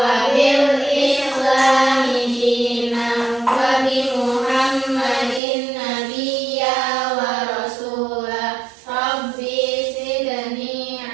bil islami dinan wa bi Muhammadin nabiyya wa rasula. Rabbi zidni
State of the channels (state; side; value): drops out; left; at 5.4 s